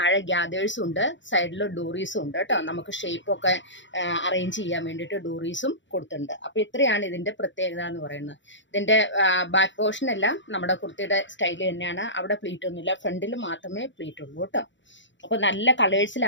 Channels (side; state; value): right; late; 0.54 ms